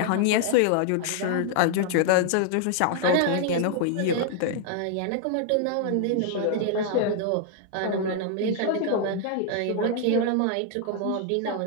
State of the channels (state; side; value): different; both; correlation 0.00